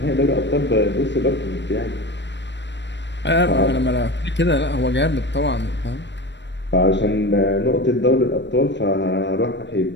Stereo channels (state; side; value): late; right; 0.52 ms